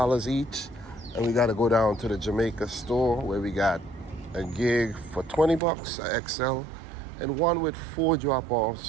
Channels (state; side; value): drops out; left; at 5.6 s